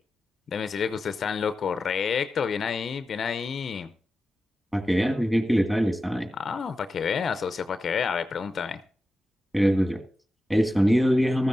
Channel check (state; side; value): normal; both; correlation 0.92